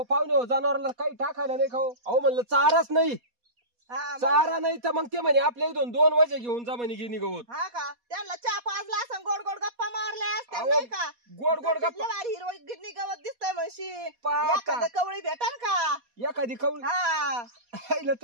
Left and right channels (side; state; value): left; late; 4.2 ms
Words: पाहुणे हो जनावराला काही टाकायला नाही खाऊ अहो म्हणलं चाराच नाही चारा नाही तर मग ते म्हणे आपल्या इथून 2 वजे घेऊन जा म्हणे गिनी गवत हा का त्यांना चहा पाजला असं गोड गोड गप्पा मारल्या असत्या नाही का गोड गोड गप्पा भारी हिरवं गिन्नी गवत दिसतंय म्हणशील एखादं कवळी भेटन का एखादी कवळी हा